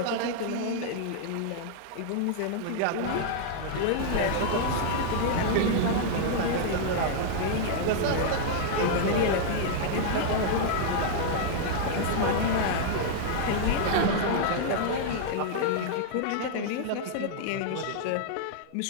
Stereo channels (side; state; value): both; different; correlation -0.01